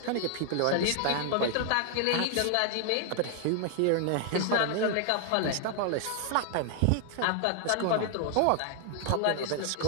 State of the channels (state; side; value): different; both; correlation 0.00